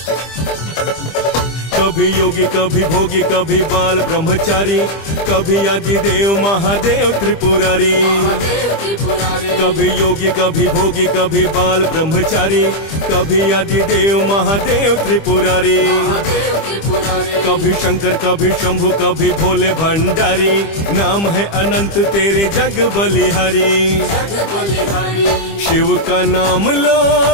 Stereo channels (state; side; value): late; right; 25 ms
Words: कभी योगी कभी भोगी कभी बाल ब्रह्मचारी, कभी आदिदेव महादेव त्रिपुरारी। महादेव त्रिपुरारी कभी योगी कभी भोगी कभी बाल ब्रह्मचारी, कभी आदिदेव महादेव त्रिपुरारी। महादेव त्रिपुरारी कभी शंकर कभी शंभु कभी भोले भंडारी। नाम है अनंत तेरे जग बलिहारी। जग बलिहारी शिव का नाम लो